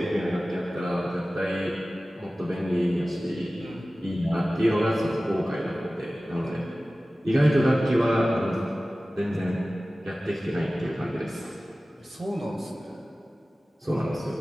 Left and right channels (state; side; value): normal; both; correlation 0.97